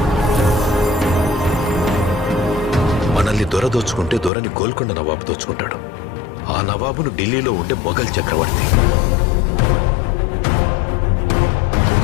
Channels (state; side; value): drops out; right; at 4.3 s